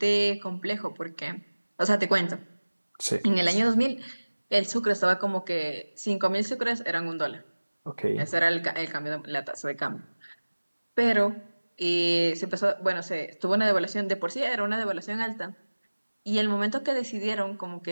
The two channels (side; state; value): both; inverted; correlation -1.00